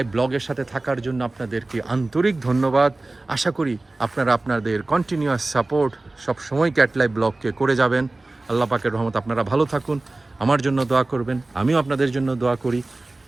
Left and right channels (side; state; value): left; quieter; 3.0 dB